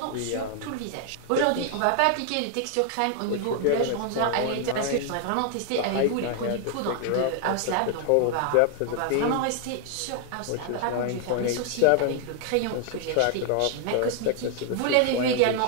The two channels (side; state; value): both; different; correlation 0.00